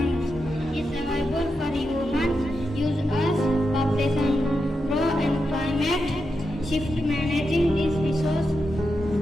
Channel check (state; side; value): normal; both; correlation 0.87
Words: is available for human use as population grow and climate shift. Managing this resource